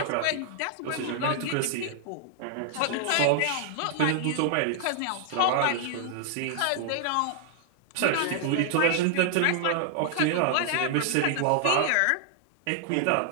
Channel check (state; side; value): different; both; correlation -0.01